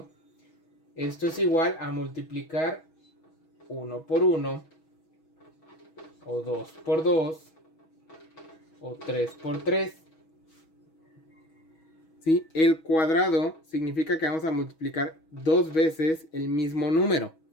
esto es igual a multiplicar 1 por 1, o 2 por 2, o 3 por 3. ¿Sí? El cuadrado significa que vamos a multiplicar 2 veces el mismo número.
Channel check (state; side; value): late; right; 6.3 ms